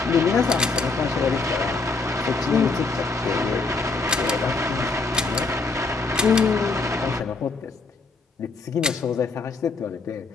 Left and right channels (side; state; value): right; quieter; 3.9 dB